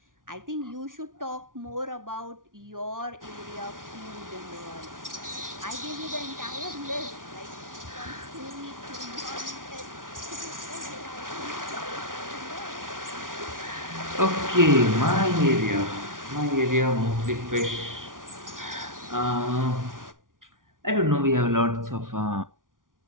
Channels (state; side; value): late; left; 0.89 ms